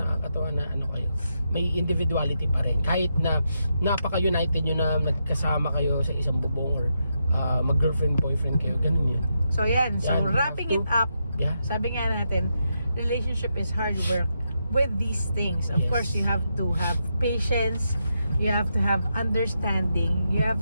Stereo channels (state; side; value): inverted; both; correlation -0.83